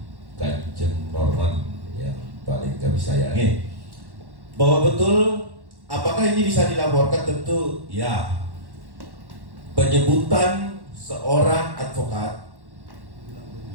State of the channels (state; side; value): late; left; 1.1 ms